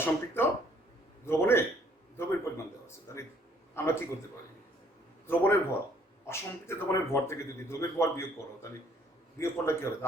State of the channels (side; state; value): both; normal; correlation 0.62